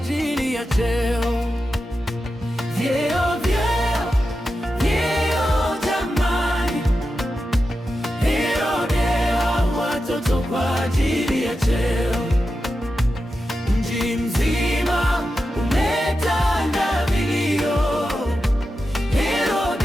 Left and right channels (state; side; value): normal; both; correlation 0.90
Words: ya cheo. Vyeo jamani, Herode aua watoto kwa ajili ya cheo. Mji mzima umetanda vilio,